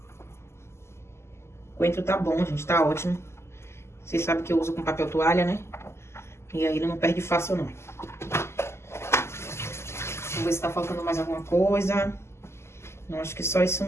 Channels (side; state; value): right; late; 0.13 ms